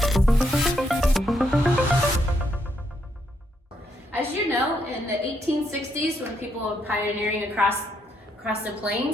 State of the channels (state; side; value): normal; both; correlation 0.76